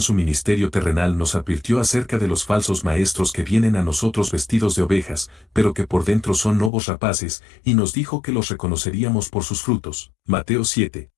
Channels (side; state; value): right; drops out; at 6.7 s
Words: su ministerio terrenal nos advirtió acerca de los falsos maestros que vienen a nosotros vestidos de ovejas, pero que por dentro son lobos rapaces, y nos dijo que los reconoceríamos por sus frutos. Mateo 7,